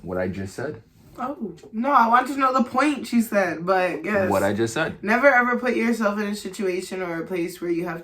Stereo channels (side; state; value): both; identical; correlation 1.00